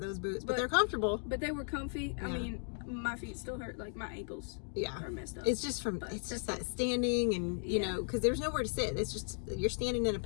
boots, but they're comfortable. But they were comfy. Yeah. I mean, my feet still hurt, like my ankles are messed up. It's just that standing, and you know, because there's nowhere to sit. It's just you're standing in a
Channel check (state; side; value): silent; right; 54 dB below the other